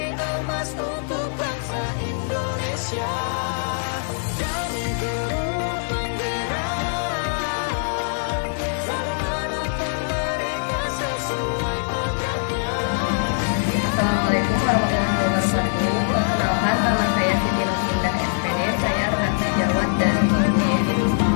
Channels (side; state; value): right; silent; 58 dB below the other